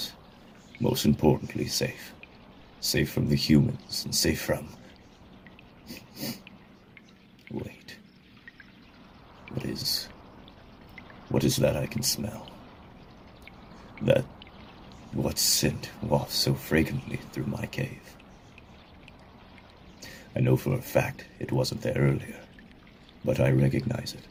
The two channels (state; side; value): identical; both; correlation 1.00